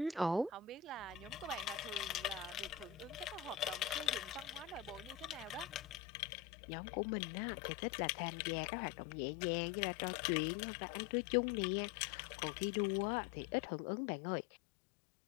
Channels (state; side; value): drops out; right; at 6.0 s